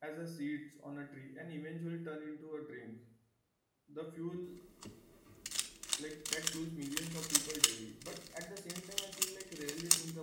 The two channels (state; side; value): identical; both; correlation 1.00